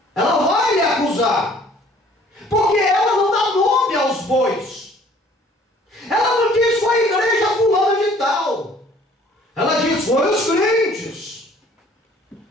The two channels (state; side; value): normal; both; correlation 0.55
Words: Ela vai lhe acusar, porque ela não dá nome aos bois. Ela não diz foi a igreja fulana de tal. Ela diz foi os crentes.